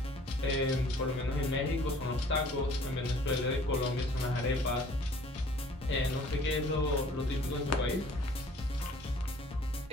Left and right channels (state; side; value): normal; both; correlation 0.53